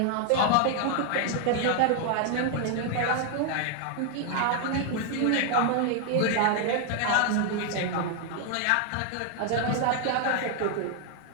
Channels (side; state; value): both; different; correlation 0.00